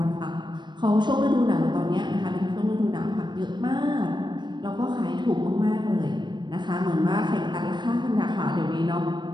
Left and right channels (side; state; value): left; late; 0.22 ms